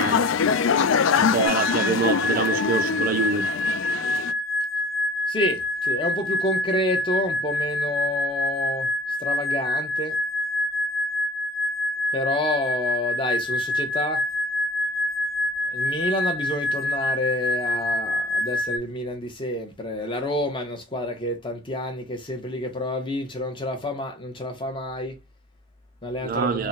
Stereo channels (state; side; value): normal; both; correlation 0.42